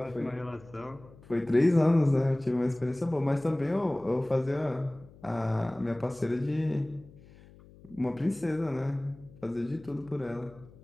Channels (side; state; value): left; noise; hum, 23 dB below the sound